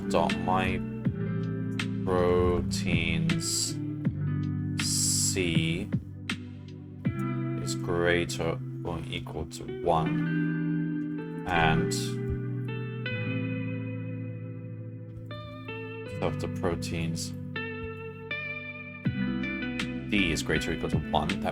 C is greater or equal to 1 and self.proteins D is greater or equal to 1,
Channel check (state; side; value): identical; both; correlation 1.00